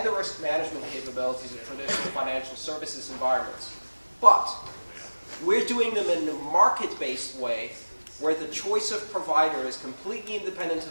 the risk management capabilities of traditional financial services environments. But we're doing them in a market-based way where the choice of provider is completely independent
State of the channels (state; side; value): inverted; both; correlation -1.00